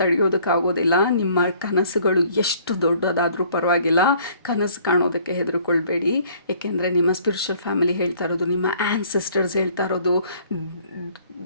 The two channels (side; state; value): both; inverted; correlation -0.58